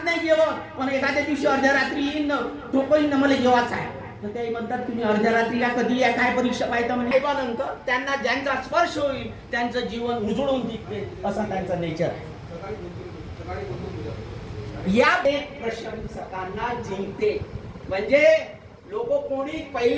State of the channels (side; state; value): both; identical; correlation 1.00